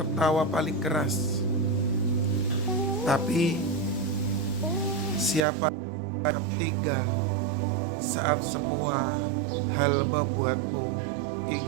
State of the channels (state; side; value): drops out; left; at 5.5 s